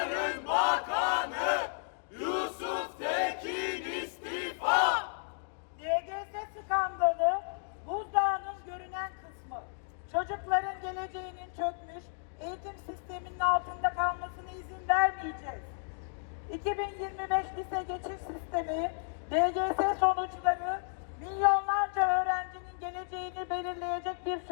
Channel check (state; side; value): silent; right; digital silence